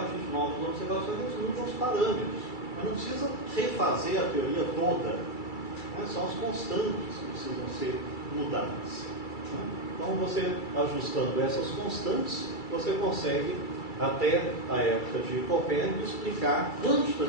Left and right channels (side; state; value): right; late; 2.3 ms